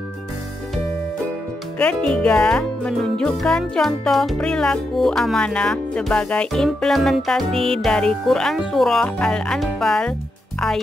Ketiga, menunjukkan contoh perilaku amanah sebagai implementasi dari Quran Surah Al-Anfal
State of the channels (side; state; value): both; normal; correlation 0.84